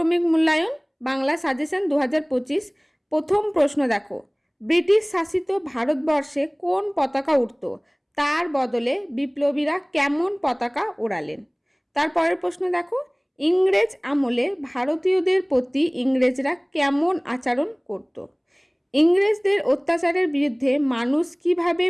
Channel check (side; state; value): both; identical; correlation 1.00